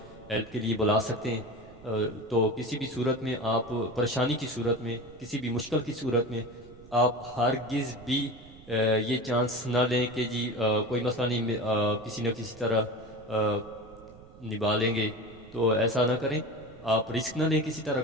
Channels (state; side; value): noise; right; rumble, 21 dB below the sound